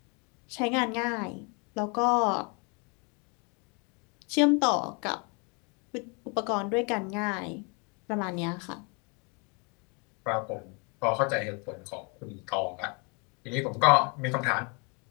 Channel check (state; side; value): quieter; right; 33.3 dB